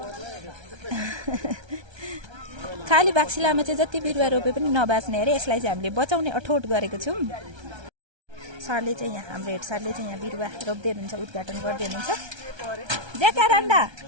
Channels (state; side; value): late; left; 1.3 ms